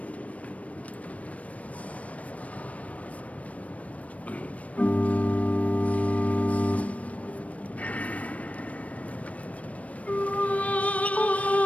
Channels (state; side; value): late; right; 0.066 ms